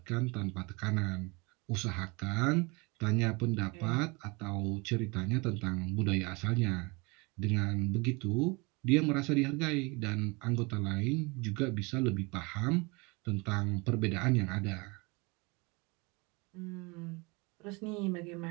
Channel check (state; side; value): quieter; left; 27.4 dB